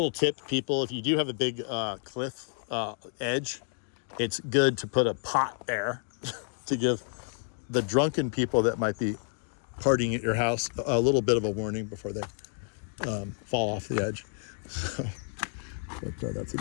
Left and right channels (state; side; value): silent; right; 56 dB below the other